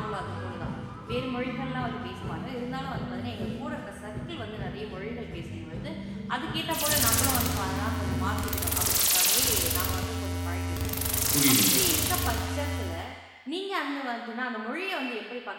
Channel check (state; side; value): identical; both; correlation 1.00